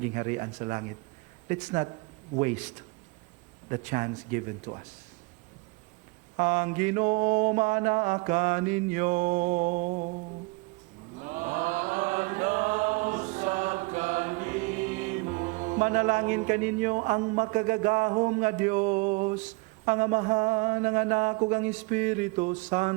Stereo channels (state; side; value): quieter; left; 27.1 dB